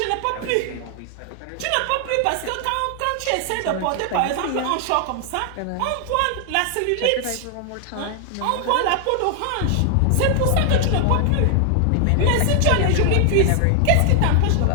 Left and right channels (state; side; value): different; both; correlation 0.00